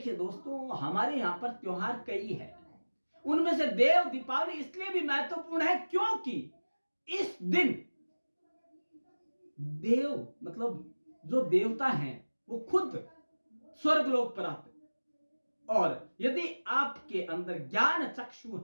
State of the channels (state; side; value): inverted; both; correlation -1.00